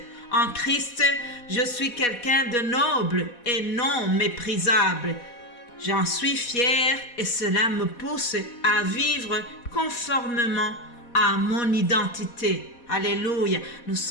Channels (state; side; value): late; right; 4.1 ms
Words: En Christ, je suis quelqu'un de noble et non méprisable. J'en suis fier et cela me pousse à vivre conformément à mon identité. Alléluia. Nous